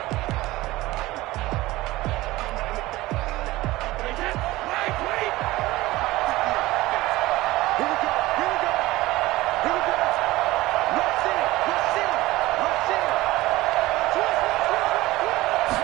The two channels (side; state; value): left; quieter; 18.5 dB